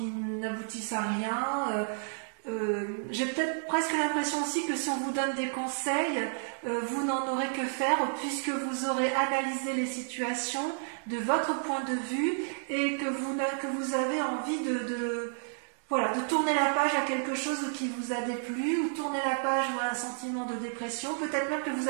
à rien. J'ai peut-être presque l'impression aussi que si on vous donne des conseils, vous n'en aurez que faire, puisque vous aurez analysé les situations de votre point de vue et que vous avez envie de tourner la page à quelque chose qui vous a déplu, ou tourner la page à un sentiment de dépression. Peut-être même que vous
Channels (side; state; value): left; silent; digital silence